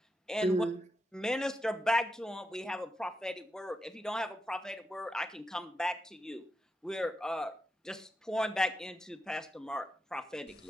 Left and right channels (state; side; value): normal; both; correlation 0.86